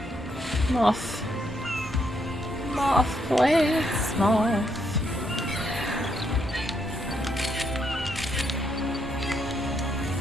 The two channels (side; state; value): both; normal; correlation 0.76